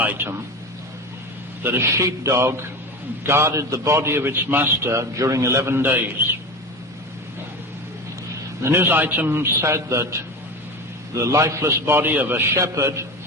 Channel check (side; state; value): both; normal; correlation 0.26